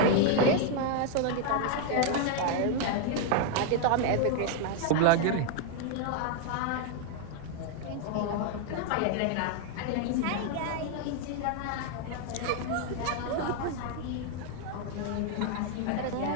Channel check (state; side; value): different; both; correlation 0.00